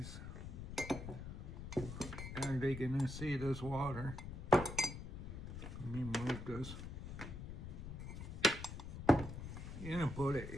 Are they gonna see this water? Let me move this. You're gonna put it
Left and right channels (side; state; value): left; noise; rumble, 8 dB below the sound